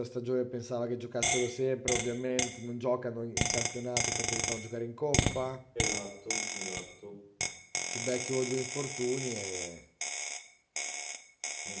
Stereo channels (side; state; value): both; identical; correlation 1.00